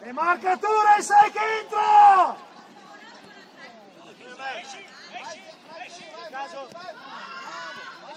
E marcature, sai che entra!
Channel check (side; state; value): both; identical; correlation 1.00